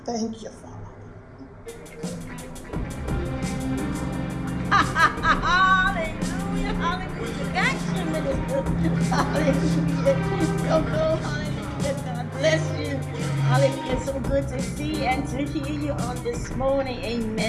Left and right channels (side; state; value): both; identical; correlation 1.00